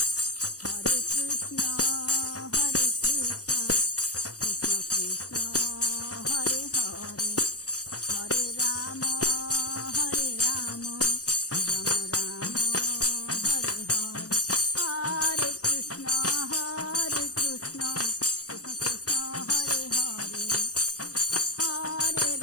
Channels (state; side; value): late; right; 0.67 ms